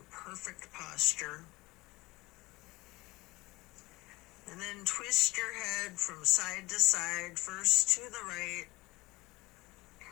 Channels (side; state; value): right; quieter; 21.7 dB